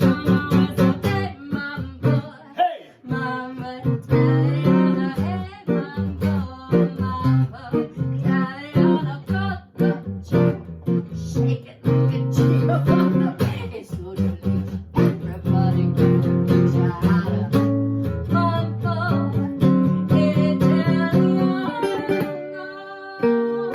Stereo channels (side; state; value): both; identical; correlation 1.00